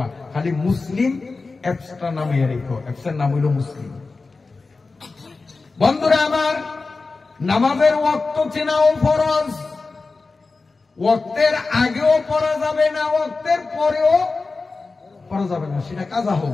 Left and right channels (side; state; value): right; quieter; 3.9 dB